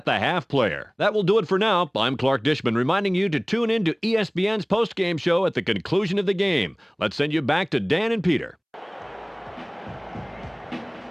the Half player. That will do it for now. I'm Clark Dishman reminding you to tune in to ESPN's post-game show at the conclusion of the game. Let's send you back to Dan and Peter.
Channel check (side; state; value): both; identical; correlation 1.00